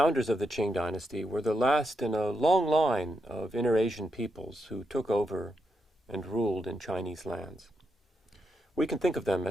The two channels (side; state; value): both; normal; correlation 0.83